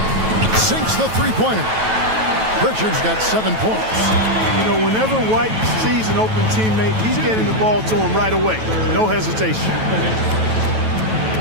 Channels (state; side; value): late; left; 9.2 ms